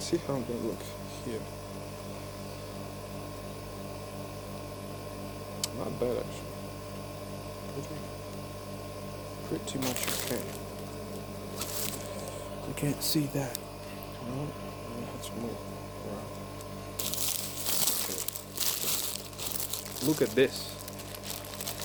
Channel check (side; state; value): both; identical; correlation 1.00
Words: see how I'm gonna look here. Not bad, actually. Pretty much okay. You can't see that. No, let's move around. Okay. Look at this.